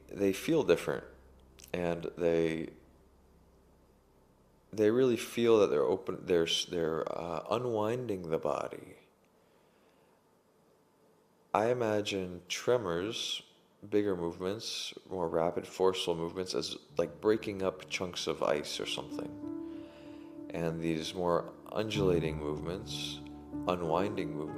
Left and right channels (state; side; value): identical; both; correlation 1.00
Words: feel different, and they really feel that they're unwinding the body. I imagine tremors, bigger movements, more rapid, forceful movements, as like breaking up chunks of ice or something. And these more undulating movements, unwinding